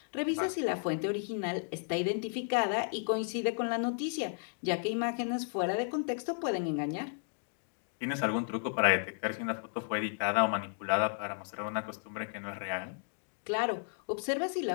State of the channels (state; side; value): silent; right; digital silence